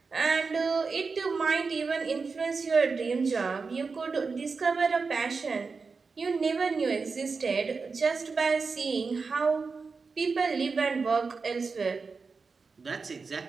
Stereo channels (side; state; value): left; quieter; 4.7 dB